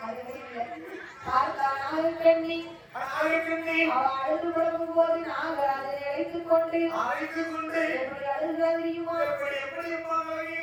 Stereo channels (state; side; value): identical; both; correlation 1.00